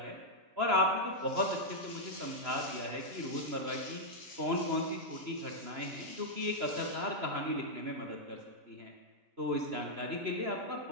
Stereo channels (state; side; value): late; left; 3.0 ms